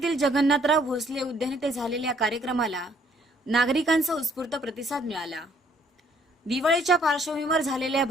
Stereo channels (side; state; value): both; normal; correlation 0.63